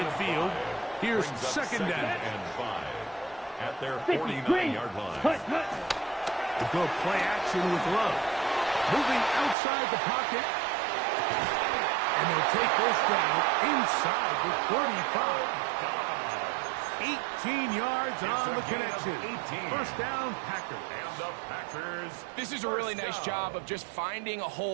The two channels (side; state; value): left; drops out; at 9.6 s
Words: Here's second down. And 5 at their 49-yard line. To go play action with Love. Moving outside the pocket. And they'll take this down inside the 45. 18 yards on the connection. First down, Packers. And the Packers. This is a really nice job of just finding a